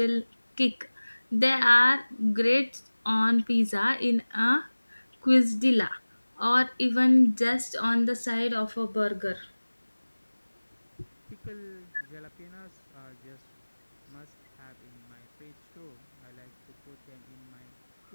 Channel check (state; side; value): inverted; both; correlation -1.00